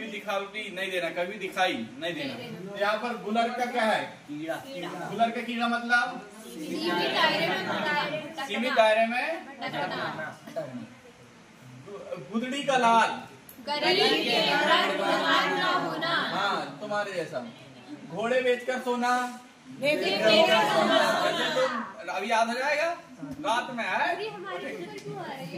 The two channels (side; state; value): both; identical; correlation 1.00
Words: दिखावटी नहीं देना, कभी दिखाई नहीं देना। यहाँ पर गुलर का क्या है? कीड़ा। गुलर का कीड़ा मतलब सीमित दायरे में। गुदड़ी का लाल, हाँ तुम्हारे जैसा। घोड़े बेचकर सोना, अभी याद हो जाएगा, रात में है